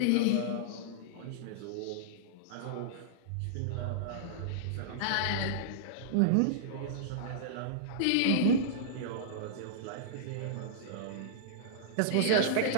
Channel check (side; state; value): both; different; correlation -0.02